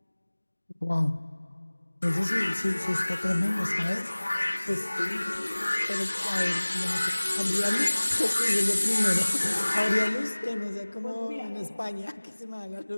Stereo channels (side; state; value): both; inverted; correlation -1.00